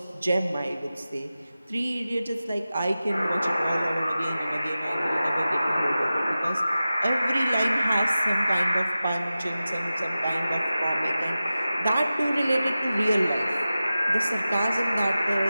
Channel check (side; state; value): both; inverted; correlation -0.95